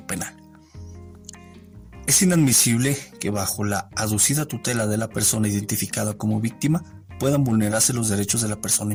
penal. Es inadmisible que bajo la aducida tutela de la persona identificada como víctima puedan vulnerarse los derechos de la persona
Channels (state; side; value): identical; both; correlation 1.00